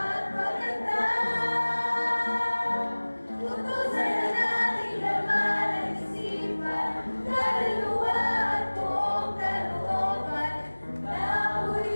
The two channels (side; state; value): both; inverted; correlation -1.00